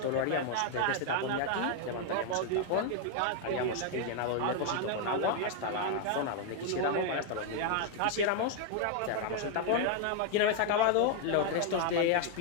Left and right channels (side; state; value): both; different; correlation 0.00